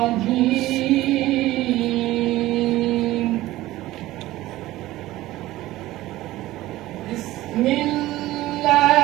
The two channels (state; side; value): quieter; left; 16.6 dB